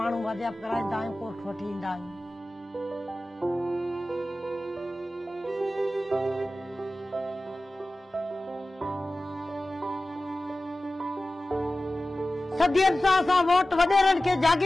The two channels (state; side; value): normal; both; correlation 0.96